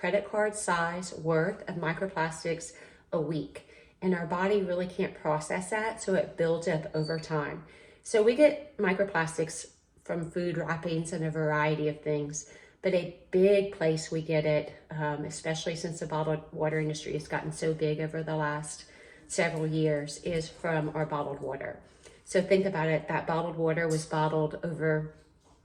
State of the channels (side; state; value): both; identical; correlation 1.00